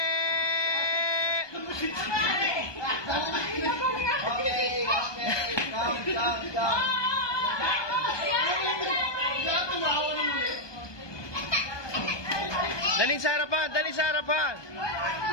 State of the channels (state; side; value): late; right; 1.2 ms